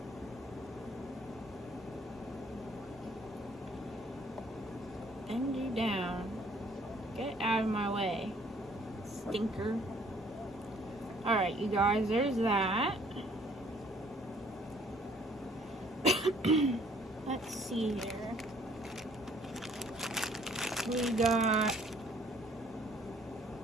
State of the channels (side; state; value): both; normal; correlation 0.60